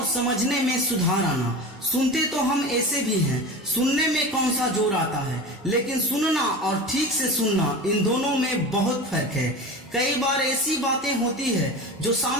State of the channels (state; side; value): normal; both; correlation 0.30